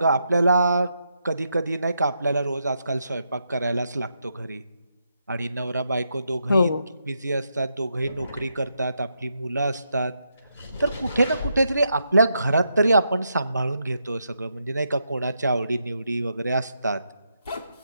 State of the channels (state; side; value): inverted; both; correlation -0.81